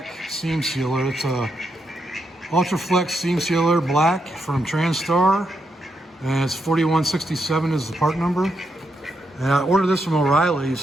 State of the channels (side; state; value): both; normal; correlation 0.81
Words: seam sealer, it's a Ultraflex seam sealer black from TransStar, and it's 4167 is the part number. And I ordered this from